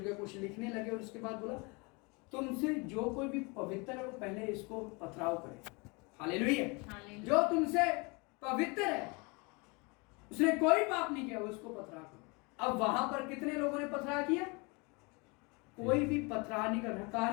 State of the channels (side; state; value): right; quieter; 29.0 dB